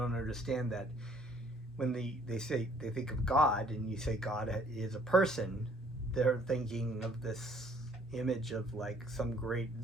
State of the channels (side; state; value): both; normal; correlation 0.60